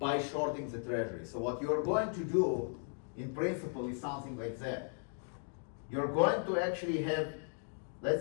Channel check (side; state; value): right; silent; 53 dB below the other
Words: shorting the treasury. So what you're going to do, in principle, is something like that. You're going to actually have,